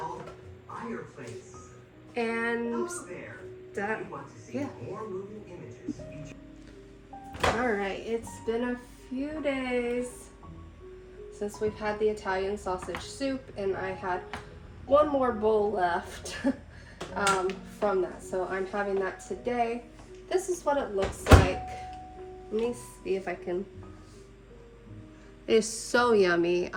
and done. Yeah. Alright, it's been a few days since we've had the Italian sausage soup, and I had one more bowl left from that, so I'm having that today. This is what it looks like. Let me see if I can. It is so yummy.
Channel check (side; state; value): both; identical; correlation 1.00